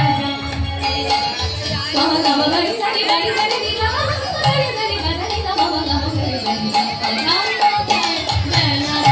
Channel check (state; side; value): identical; both; correlation 1.00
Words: যায়, বাবা বাবা বাড়ি সারি বাড়ি সারি দিলা বাড়ি সারি বাজারি না বাবা বাবা সারি বাড়ি কথাই কথাই মেলা